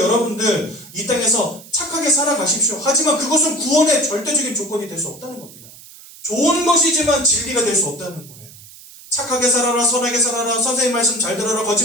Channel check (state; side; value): noise; right; hiss, 19 dB below the sound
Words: 이 땅에서 착하게 살아가십시오. 하지만 그것은 구원의 절대적인 조건이 될 수 없다는 겁니다. 좋은 것이지만 진리가 될 수 없다는 거예요. 착하게 살아라, 선하게 살아라, 선생님 말씀 잘 들어라,